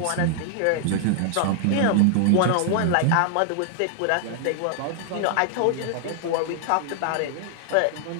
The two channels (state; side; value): different; both; correlation 0.00